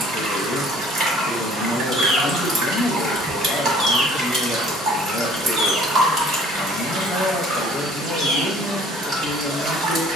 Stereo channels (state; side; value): normal; both; correlation 0.54